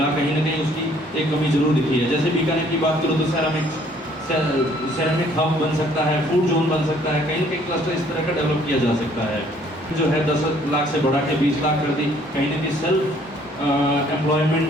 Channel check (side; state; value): both; normal; correlation 0.61